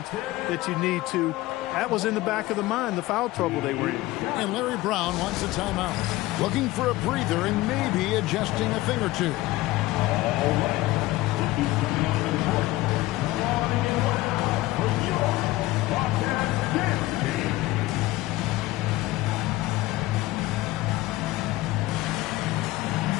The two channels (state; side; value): quieter; right; 18.1 dB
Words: that you need to. That was in the back of the mind, the foul trouble they were in. And Larry Brown wants a timeout. Looking for a breather and maybe adjusting a thing or two. All right. This is coming on to the court. Warming it up for your Bobcats dance team.